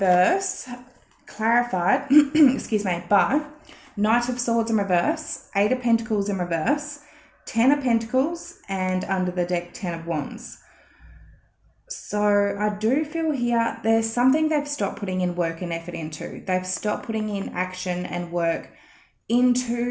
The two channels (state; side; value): identical; both; correlation 1.00